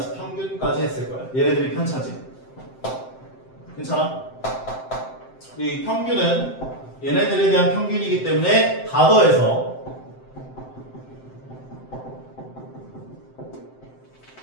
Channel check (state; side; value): late; right; 7.7 ms